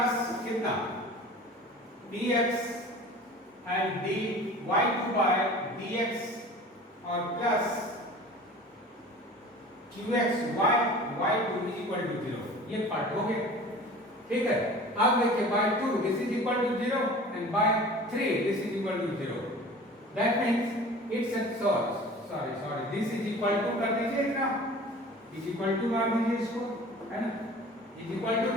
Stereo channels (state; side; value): normal; both; correlation 0.42